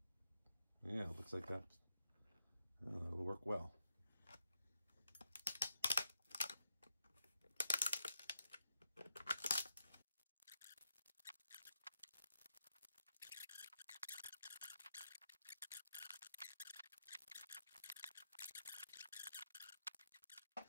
Yeah, it looks like that. It'll work well.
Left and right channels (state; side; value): inverted; both; correlation -0.83